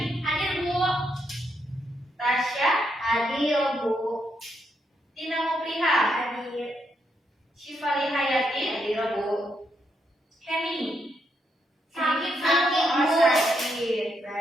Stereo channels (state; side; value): normal; both; correlation 0.79